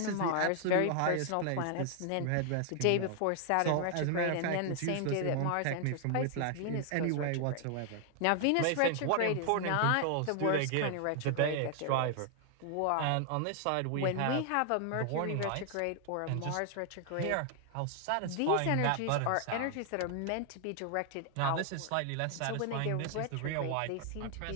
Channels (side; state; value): both; different; correlation 0.00